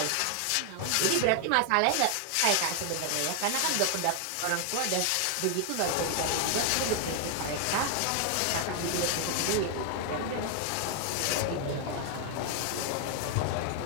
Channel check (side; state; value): both; different; correlation 0.00